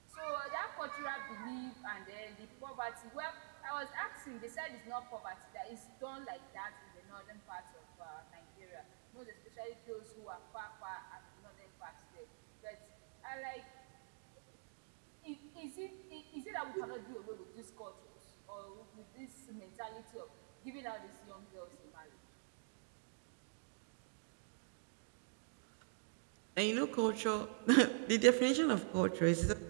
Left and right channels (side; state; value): left; silent; digital silence